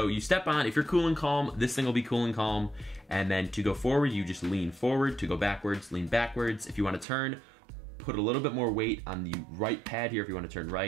you step on, if you're cool and calm, this thing will be cool and calm, and then to go forward, you just lean forward. To go backwards, lean backwards. If you want to turn, put a little bit more weight on the right pad here. If you want to turn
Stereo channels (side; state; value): left; drops out; at 7.1 s